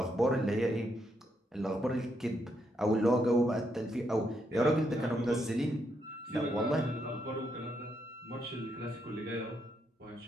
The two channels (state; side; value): normal; both; correlation 0.78